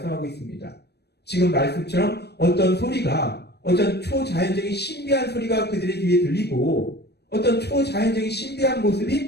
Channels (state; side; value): late; right; 0.48 ms